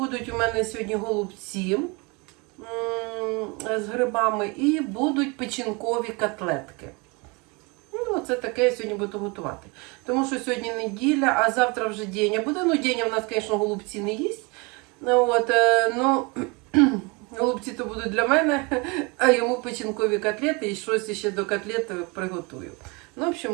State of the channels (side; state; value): left; quieter; 28.4 dB